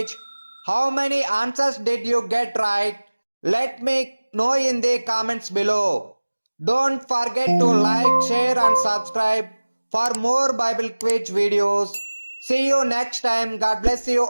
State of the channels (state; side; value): inverted; both; correlation -1.00